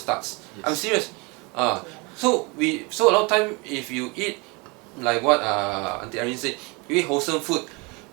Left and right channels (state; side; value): quieter; left; 28.4 dB